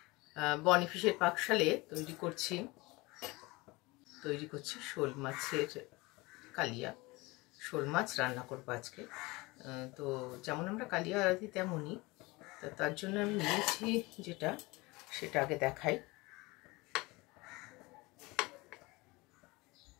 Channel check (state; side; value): quieter; right; 23.2 dB